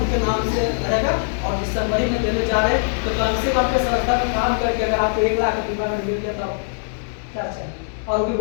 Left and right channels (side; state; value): right; silent; digital silence